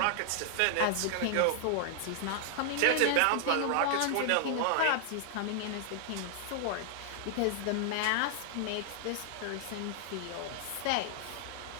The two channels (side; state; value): both; different; correlation -0.01